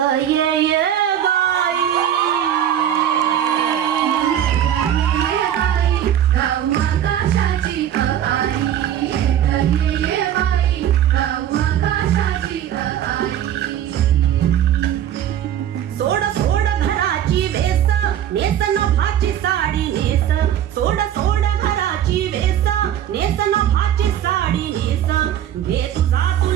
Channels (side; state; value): left; quieter; 10.5 dB